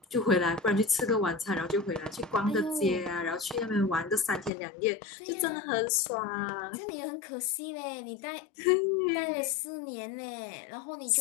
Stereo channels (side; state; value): right; drops out; at 4.5 s